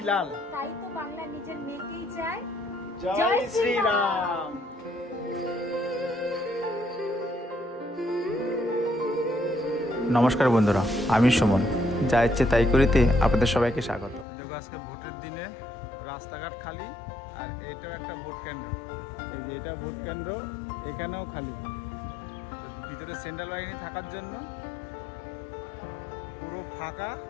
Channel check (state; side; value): drops out; right; at 14.2 s